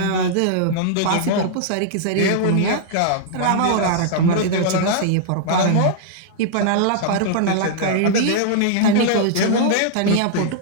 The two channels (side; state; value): both; different; correlation -0.01